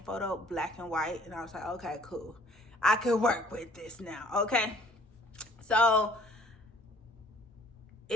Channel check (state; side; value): normal; both; correlation 0.57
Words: photo, black and white. And I was like, okay, cool. I could work with this now, okay? So